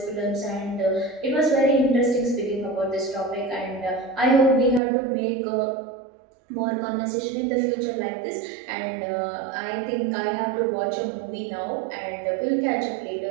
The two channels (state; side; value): drops out; left; at 4.8 s